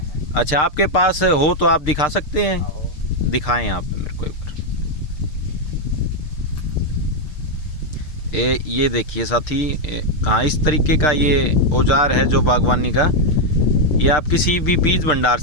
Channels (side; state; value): right; late; 6.6 ms